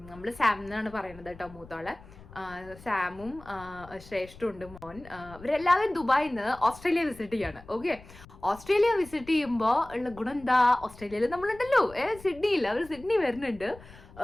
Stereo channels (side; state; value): left; noise; rumble, 20 dB below the sound